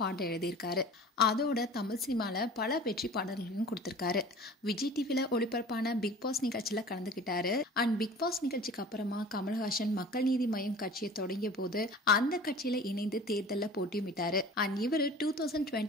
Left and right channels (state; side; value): normal; both; correlation 0.42